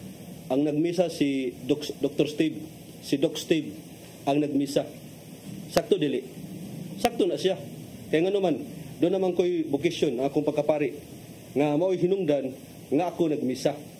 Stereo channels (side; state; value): both; identical; correlation 1.00